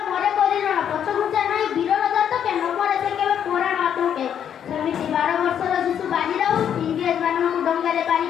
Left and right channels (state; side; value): quieter; right; 8.9 dB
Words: ମରେ କରିରଣ, ପଛଘୁଞ୍ଚା ନାହିଁ ବୀରର ଜାତକେ, ନ ମରେ ସେ କେବେ ପୁରାଣ ଆତଙ୍କେ। ସେମିତି 12 ବର୍ଷର ଶିଶୁ ବାଜି ରାଉତ ଇଂରେଜ ମାନଙ୍କୁ ଡଙ୍ଗାରେ ପାରି